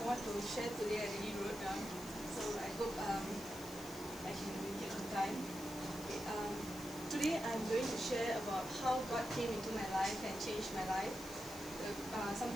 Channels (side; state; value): left; noise; hiss, 15 dB below the sound